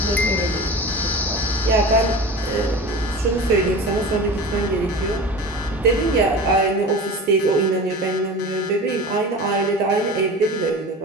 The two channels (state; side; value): normal; both; correlation 0.33